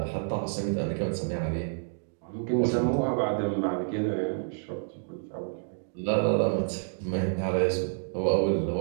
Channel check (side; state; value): left; silent; digital silence